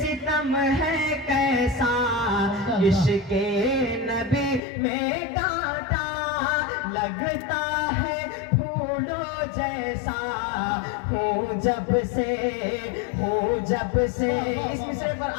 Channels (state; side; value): drops out; right; at 4.6 s